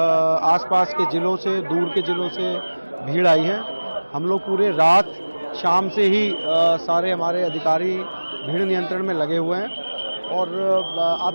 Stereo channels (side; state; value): both; inverted; correlation -1.00